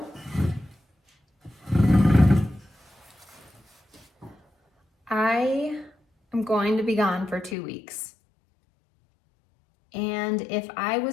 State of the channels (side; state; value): right; drops out; at 7.6 s